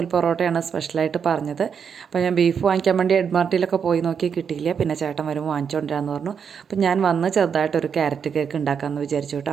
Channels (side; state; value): left; quieter; 6.9 dB